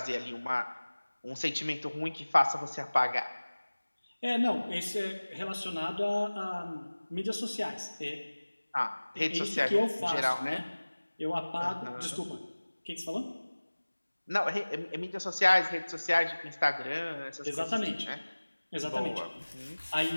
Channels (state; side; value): inverted; both; correlation -1.00